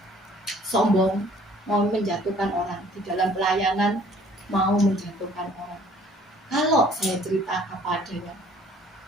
sombong, mau menjatuhkan orang di dalam pelayanan, mau menjatuhkan orang. Kalau saya cerita apa adanya,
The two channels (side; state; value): both; normal; correlation 0.56